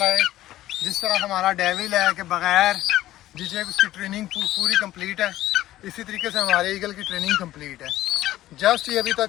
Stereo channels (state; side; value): quieter; right; 14.6 dB